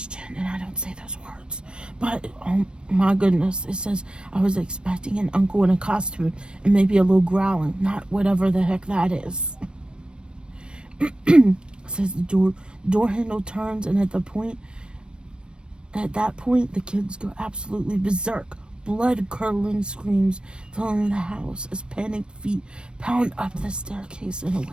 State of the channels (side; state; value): left; late; 0.055 ms